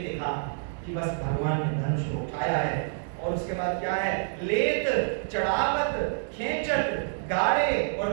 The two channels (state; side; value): silent; left; digital silence